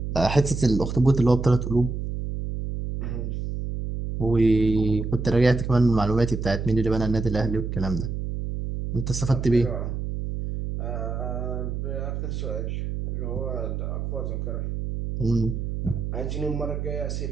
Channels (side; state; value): right; noise; hum, 4 dB below the sound